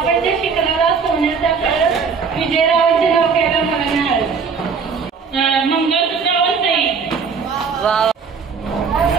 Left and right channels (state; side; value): quieter; left; 5.6 dB